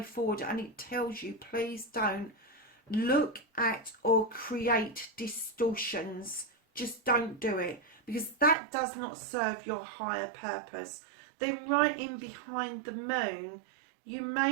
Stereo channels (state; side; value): drops out; left; at 8.6 s